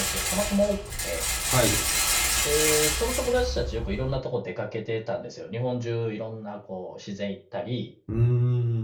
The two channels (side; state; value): both; identical; correlation 1.00